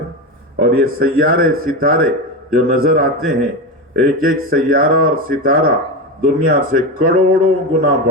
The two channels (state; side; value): normal; both; correlation 0.18